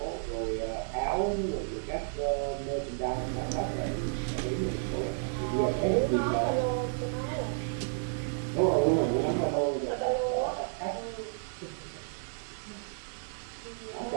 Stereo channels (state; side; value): silent; left; digital silence